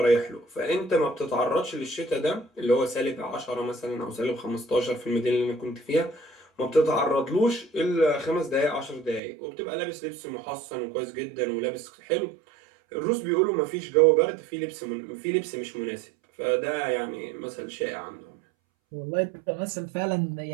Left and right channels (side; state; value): left; drops out; at 9.2 s